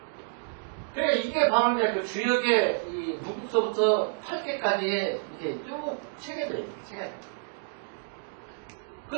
그래 이게 바로 이제 그 주역의 이 무국서부터 8개까지의 이제 쭉 체계들이에요. 체계.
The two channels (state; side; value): silent; left; digital silence